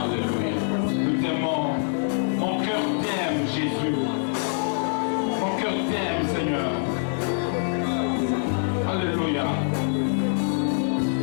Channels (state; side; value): silent; right; digital silence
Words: Jésus, mon cœur t'aime, Seigneur. Alléluia.